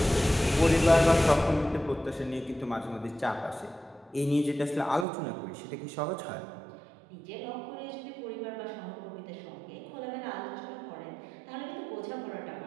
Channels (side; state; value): left; drops out; at 5.1 s